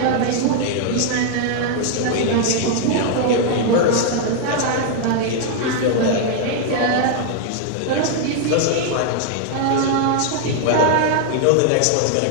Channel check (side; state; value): both; different; correlation 0.00